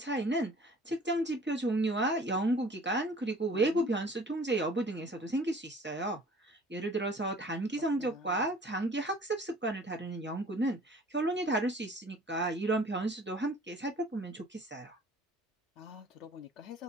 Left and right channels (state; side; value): normal; both; correlation 0.50